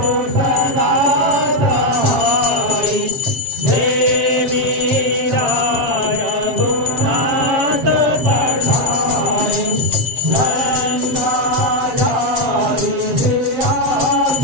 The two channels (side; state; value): left; late; 7.6 ms